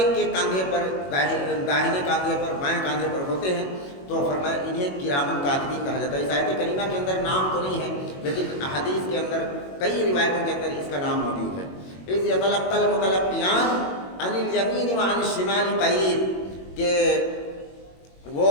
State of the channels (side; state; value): right; late; 21 ms